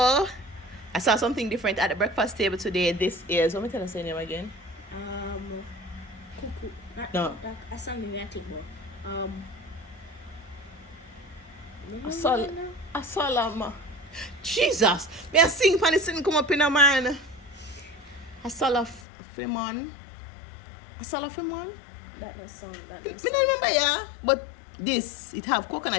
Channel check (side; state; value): right; drops out; at 19.0 s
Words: I saw something different at the breakfast table today. This is, let me tell us your name again. Cuckoo. No. I saw me I think about. I saw Lama. Jesus! Me a sing pan it come up in a man. I saw a Femon. I saw a Femon. That is some. Me don't remember, yeah. But this, it have